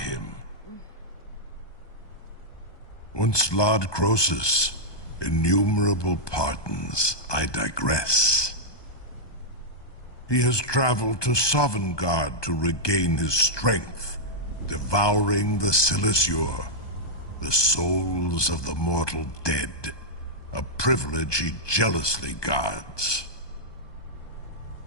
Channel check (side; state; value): right; late; 1.2 ms